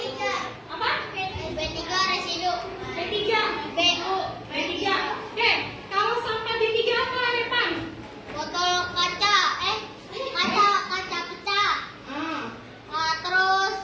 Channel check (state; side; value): identical; both; correlation 1.00